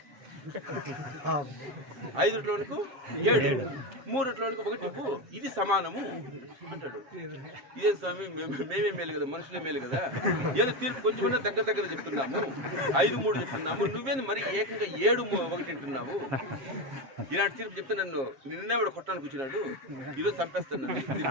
5 రొట్టెల వానికి 7, 3 రొట్టెల వానికి 1 ఇవ్వు, ఇది సమానము అంటాడు. ఇదే స్వామి, మేమే మేలు కదా, మనుషులే మేలు కదా, ఏదో తీర్పు కొంచెమన్నా దగ్గర చెప్తున్నాము, 5, 3 చెప్తున్నాము, నువ్వేంది మరి ఏకంగా 7, 1 అంటున్నావు. ఇలాంటి తీర్పు చెప్తే నిన్నే వాడు కొట్టడానికి వచ్చినాడు, ఈరోజు చంపేస్తాను నన్ను.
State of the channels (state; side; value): late; left; 7.5 ms